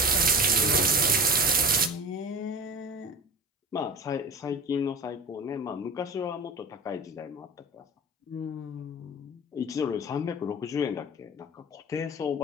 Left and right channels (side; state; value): both; normal; correlation 0.34